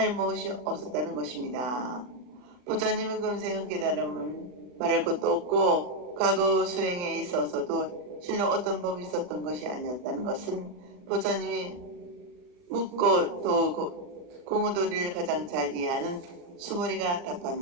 무엇이 없었다는 것입니다. 부처님의 금생의 깨달음은 말할 것도 없고 과거 수행에 있어서도 실로 어떤 법이 있었던 것이 아니었다는 것은 부처님이 묻고 또 공의도리를 가장 잘 이해하는 수보리가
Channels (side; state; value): left; late; 39 ms